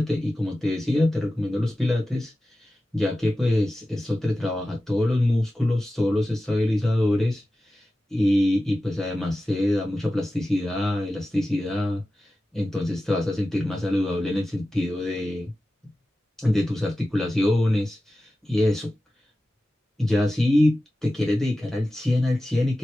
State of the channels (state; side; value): normal; both; correlation 0.94